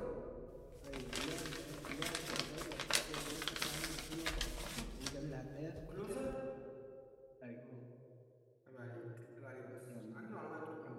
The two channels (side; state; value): both; identical; correlation 1.00